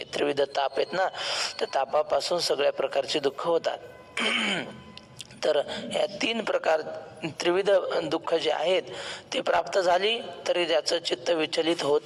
त्रिविध ताप आहेत ना, त्या तापापासून सगळ्या प्रकारचे दुःख होतात. तर या 3 प्रकार त्रिविध दुःख जे आहेत ते प्राप्त झाली तरी त्याचं चित्त विचलित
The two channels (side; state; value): both; identical; correlation 1.00